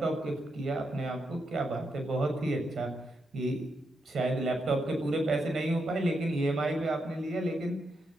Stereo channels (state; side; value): normal; both; correlation 0.82